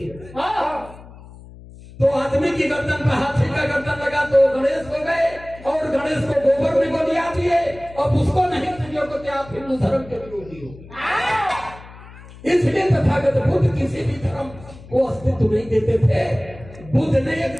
तो आदमी की गर्दन पर हाथी का गर्दन लगा तो गणेश हो गए, और गणेश को गोबर में गोलियां दिए, अब उसको नहीं समझो कि आप हिंदू धर्म के विरोधी हो। इसलिए तथागत बुद्ध किसी भी धर्म को अस्तित्व नहीं देते थे। बुद्ध ने एक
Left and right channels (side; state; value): left; noise; hum, 19 dB below the sound